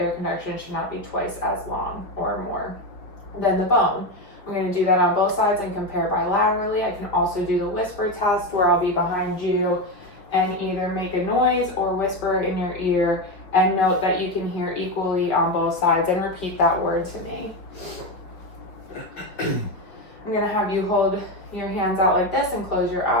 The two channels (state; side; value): late; right; 4.9 ms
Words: conduction should not be twice as long or more than the bone. I'm going to do that on both sides and compare bilaterally. I can also do the whisper test where I'll be behind you and either make a noise or whisper in your ear and note that you can hear equally on both sides and repeat that word to me. I'm going to have you hold your hands out like this and close your